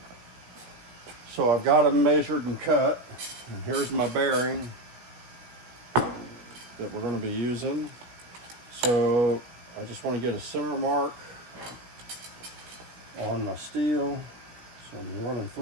So I've got them measured and cut, and here's my bearing that we're going to be using. So I just want to get a center mark on my steel. So I'm running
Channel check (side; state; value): left; late; 17 ms